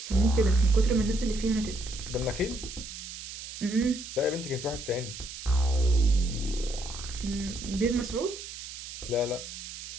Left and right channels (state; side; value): noise; right; hiss, 10 dB below the sound